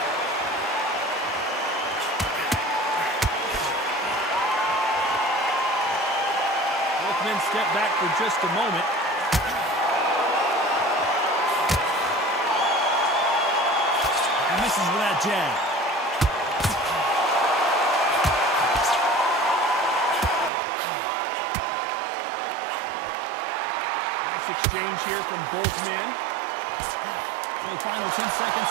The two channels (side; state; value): left; drops out; at 20.5 s